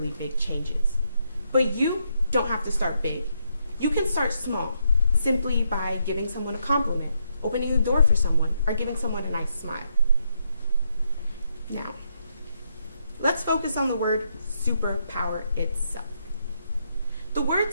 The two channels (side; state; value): both; inverted; correlation -0.78